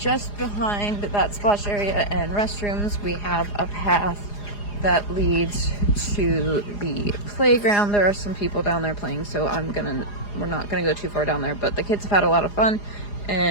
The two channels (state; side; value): late; right; 4.9 ms